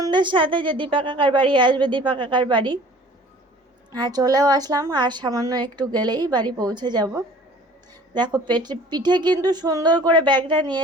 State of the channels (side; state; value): both; normal; correlation 0.48